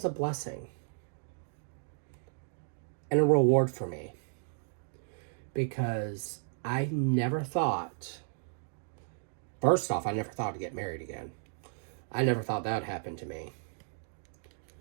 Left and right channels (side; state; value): left; silent; digital silence